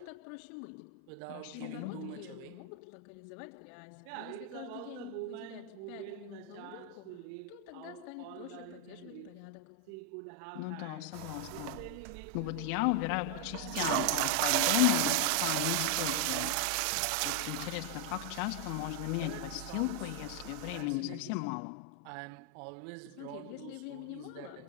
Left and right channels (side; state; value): both; different; correlation 0.00